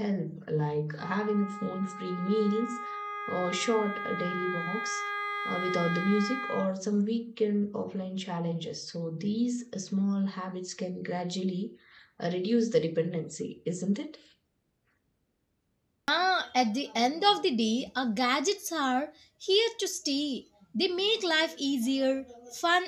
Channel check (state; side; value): identical; both; correlation 1.00